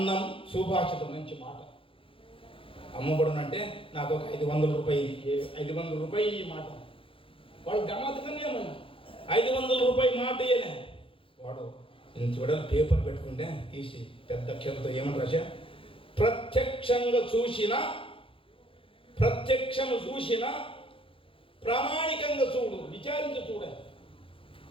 సుభాషితం. మంచి మాట. అమ్మబడునంటే నాకు ఒక 500 రూపాయలు ఈ మాట వాడు గమ్మత్తుగానే ఏమన్నా 500 రూపాయలు మాట ఇయ్యనే వాడు ఇంత చూడాలి పేపర్ పెట్టుకుంటే తీసి పెద్ద అక్షరంతో ఏమని రాశా ప్రత్యక్షము చూసిన ప్రామాణికంగా చూడు విచారించి చూడాలి.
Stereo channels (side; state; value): right; late; 0.26 ms